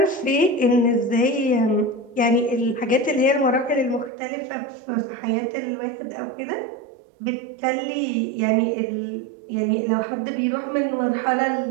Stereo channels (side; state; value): left; drops out; at 4.1 s